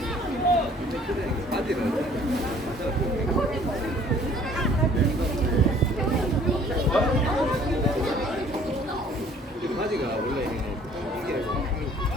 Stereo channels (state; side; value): normal; both; correlation 0.56